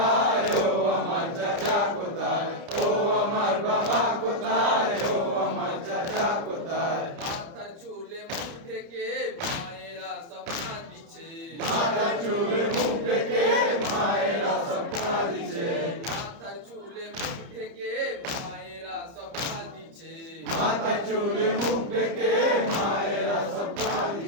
ও আমার চাচা কোথায়? ও আমার বাবা কোথায়, ও আমার চাচা কোথায়? মাথার চুলে মুখ ঢেকে মায়েরা স্বপ্না দিছে। মাথার চুলে মুখ ঢেকে মায়েরা স্বপ্না দিছে। মাথার চুলে মুখ ঢেকে মায়েরা স্বপ্না দিছে। মাথা চুলে মুখ ডেকে মায়েরা সব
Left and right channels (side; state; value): left; late; 30 ms